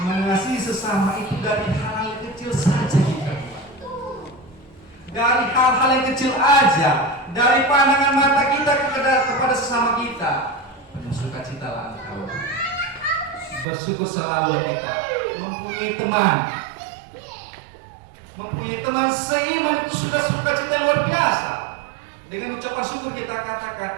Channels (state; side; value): drops out; left; at 13.7 s